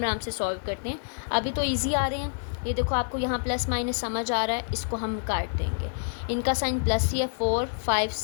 से सॉल्व करते हैं। अभी तो ईजी आ रहे हैं। ये देखो आपको यहाँ प्लस माइनस समझ आ रहा है, इसको हम काट देंगे। इनका साइन प्लस ही है। 4, 5,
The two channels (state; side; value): silent; right; digital silence